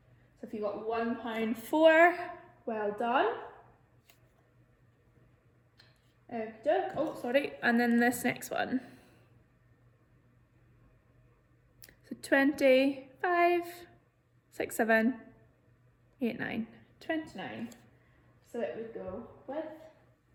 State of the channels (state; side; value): identical; both; correlation 1.00